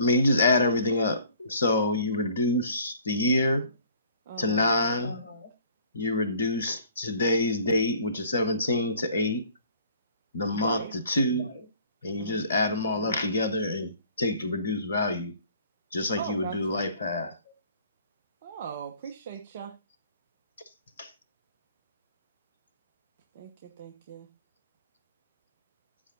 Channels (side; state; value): both; inverted; correlation -0.53